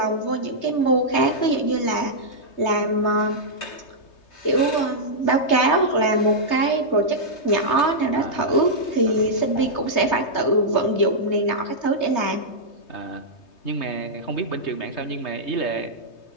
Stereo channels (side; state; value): right; late; 3.2 ms